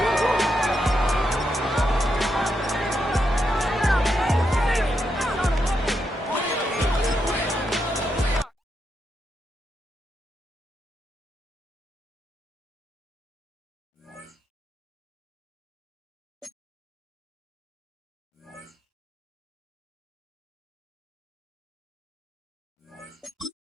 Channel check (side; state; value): both; normal; correlation 0.83